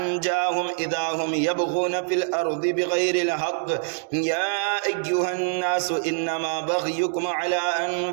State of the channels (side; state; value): left; silent; digital silence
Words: إذا هم يبغون في الأرض بغير الحق يا أيها الناس إنما بغيكم على